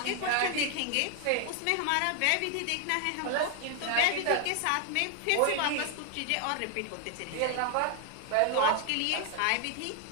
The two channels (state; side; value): different; both; correlation 0.00